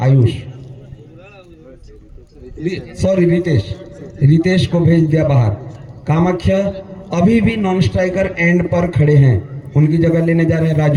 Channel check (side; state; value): both; identical; correlation 1.00